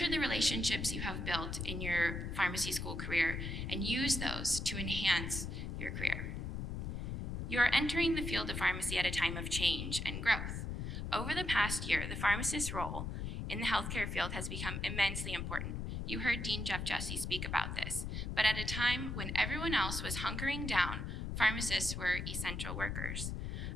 the relationships you have built in your pharmacy school career and use those to enhance your career. You are entering the field of pharmacy at a time of change and growth. Over the past year, the pharmacist's role in the healthcare field has become immensely important. You heard Dean Jeff Jessee speak about this, but at a time when everyone else was hunkering down, pharmacists were essential workers,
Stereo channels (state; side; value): noise; left; rumble, 4 dB below the sound